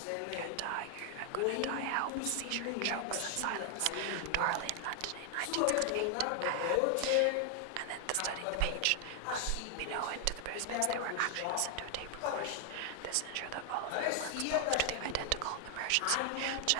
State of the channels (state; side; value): different; both; correlation 0.00